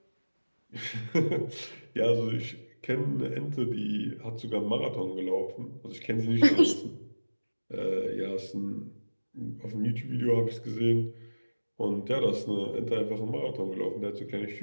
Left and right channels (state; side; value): inverted; both; correlation -1.00